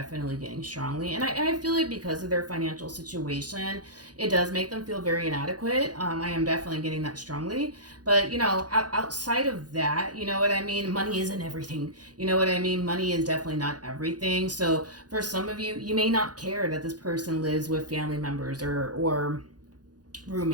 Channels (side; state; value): left; late; 0.69 ms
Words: getting strongly. And I feel like because of their financial situation, it does make them feel very inadequate. I am definitely getting that strongly. But, you know, outside of that, you know what I mean? Money isn't everything. You know what I mean? Money is definitely not everything. So for some of you, you may not care that this person lives with family members or